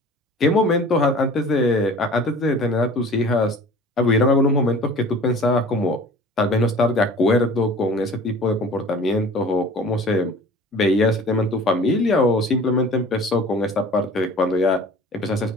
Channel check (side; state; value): both; normal; correlation 0.44